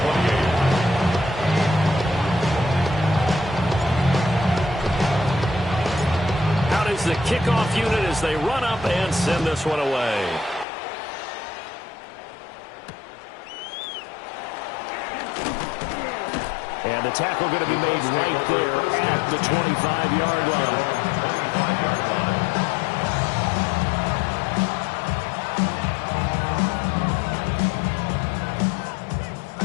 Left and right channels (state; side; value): drops out; right; at 10.7 s